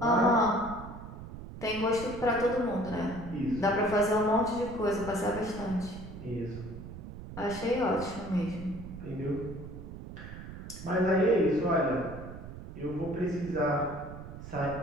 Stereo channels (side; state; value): right; noise; rumble, 12 dB below the sound